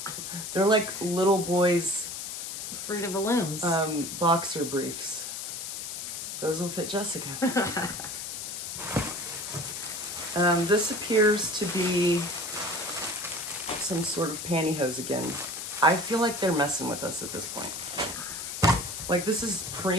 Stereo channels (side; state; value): left; noise; hiss, 6 dB below the sound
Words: They're like little boys' Fruit of the Looms. boxer briefs. Those will fit Jessica. This appears to be some sort of pantyhose again. I feel like they're messing with us at this point. Like, this is